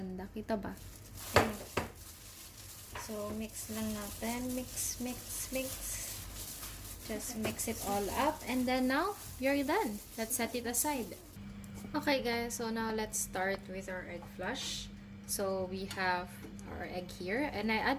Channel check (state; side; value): identical; both; correlation 1.00